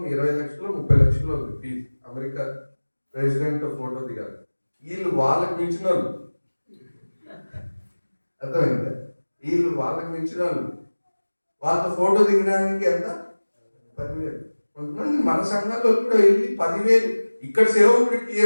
20 లక్షలు 30 లక్షలు ఉంది ఫీజు. అమెరికా ప్రెసిడెంట్ ఫోటో దిగాలి. వీళ్ళు వాళ్ళకి మించిన వాళ్ళు. అర్థమైందా? వీళ్ళు వాళ్ళకి మించిన వాళ్ళు. వాళ్ళతో ఫోటో దిగడానికి ఎంత? 10,000. కొంతమంది మన సంఘాల్లో కూడా వెళ్ళి 10,000. ఇక్కడ సేవకుడికి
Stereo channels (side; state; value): both; inverted; correlation -1.00